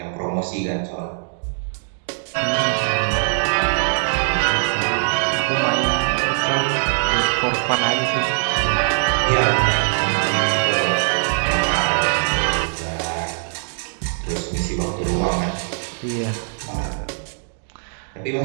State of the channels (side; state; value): left; silent; digital silence